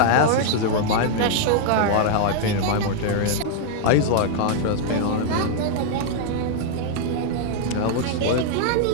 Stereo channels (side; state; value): both; different; correlation 0.00